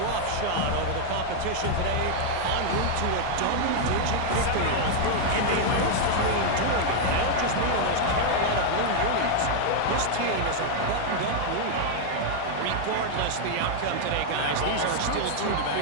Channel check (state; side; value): different; both; correlation 0.00